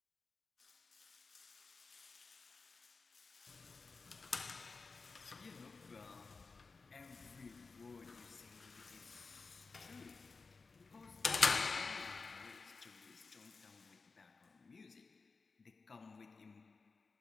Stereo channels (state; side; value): quieter; right; 4.3 dB